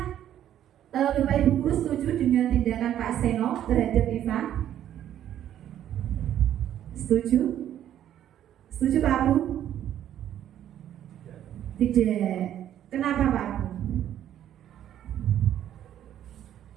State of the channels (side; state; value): left; quieter; 11.0 dB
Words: Bapak Ibu guru setuju dengan tindakan Pak Seno terhadap Iva? Setuju? Setuju Pak Abu? Tidak. Kenapa Pak Abu?